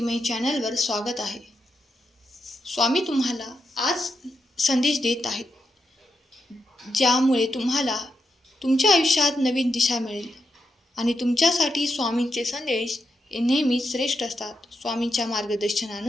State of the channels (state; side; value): normal; both; correlation 0.85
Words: चॅनलवर स्वागत आहे. स्वामी तुम्हाला आज संदेश देत आहेत, ज्यामुळे तुम्हाला तुमच्या आयुष्यात नवीन दिशा मिळेल. आणि तुमच्यासाठी स्वामींचे संदेश हे नेहमीच श्रेष्ठ असतात. स्वामींच्या